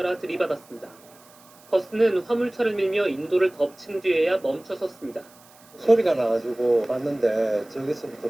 들이받았습니다. 버스는 화물차를 밀며 인도를 덮친 뒤에야 멈춰섰습니다. 소리가 나가지고 봤는데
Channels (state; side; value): noise; right; hiss, 26 dB below the sound